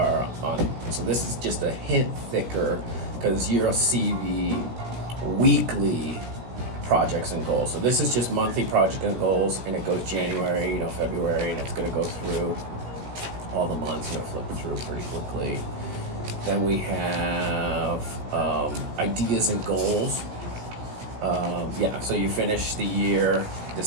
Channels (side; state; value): left; late; 17 ms